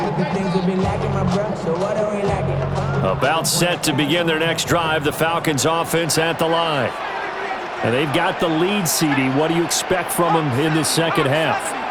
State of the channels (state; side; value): identical; both; correlation 1.00